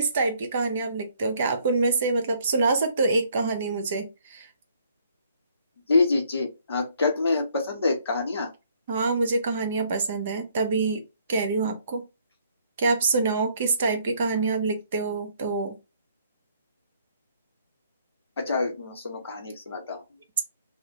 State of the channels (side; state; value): both; inverted; correlation -0.65